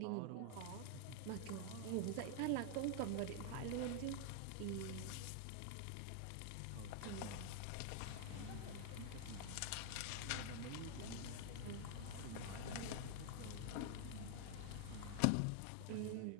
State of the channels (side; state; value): both; different; correlation 0.00